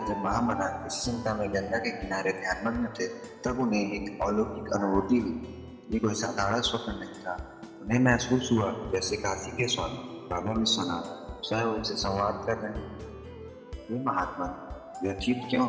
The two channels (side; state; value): both; identical; correlation 1.00